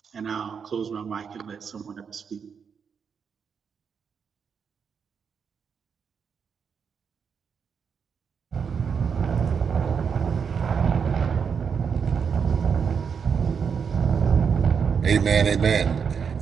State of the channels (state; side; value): quieter; left; 6.5 dB